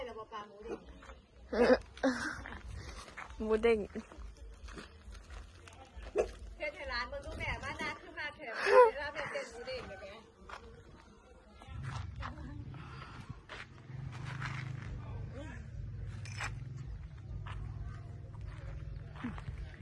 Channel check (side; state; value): both; identical; correlation 1.00